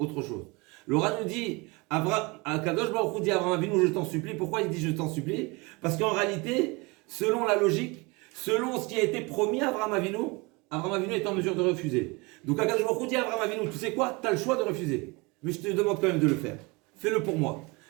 autre chose. L'Oran nous dit, Kadosh Baruch Hu dit à Abraham Avinu, je t'en supplie. Pourquoi il dit je t'en supplie? Parce qu'en réalité, selon la logique, selon ce qui a été promis à Abraham Avinu est en mesure de refuser. Donc Akadosh Baruch Hu dit à Abraham Avinu, tu sais quoi, tu as le choix de refuser. Mais je te demande quand même de le faire. Fais-le pour moi.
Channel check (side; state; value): left; quieter; 26.4 dB